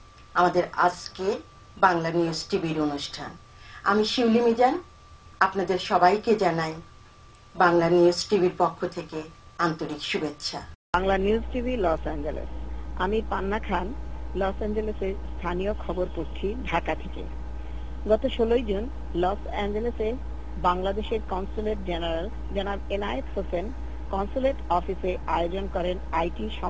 আমাদের আজকে বাংলা নিউজ টিভির অনুষ্ঠান। আমি শিউলি মিজান, আপনাদের সবাইকে জানাই বাংলা নিউজ টিভির পক্ষ থেকে আন্তরিক শুভেচ্ছা। Bangla news TV Los Angeles. আমি পান্না খান, লস অ্যাঞ্জেলেসের স্থানীয় খবর পড়ছি ঢাকা থেকে। গত 16 জুন লস অ্যাঞ্জেলেসে বাংলাদেশের কনসুলেট জেনারেল জনাব এনায়েত হোসেন কনসুলেট অফিসে আয়োজন করেন আইটি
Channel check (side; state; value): both; identical; correlation 1.00